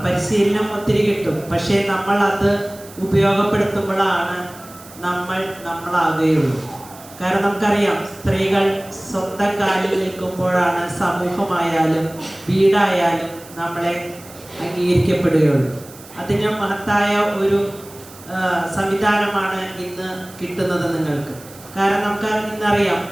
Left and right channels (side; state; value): right; noise; hiss, 20 dB below the sound